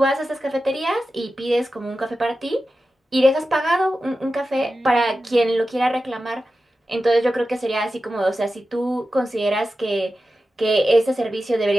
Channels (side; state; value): both; normal; correlation 0.93